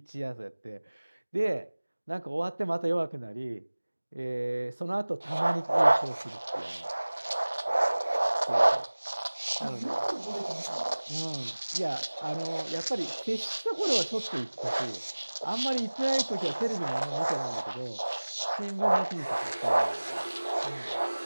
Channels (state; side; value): inverted; both; correlation -1.00